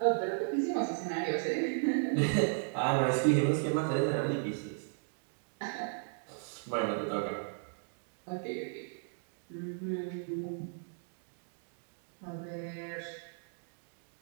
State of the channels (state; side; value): silent; left; digital silence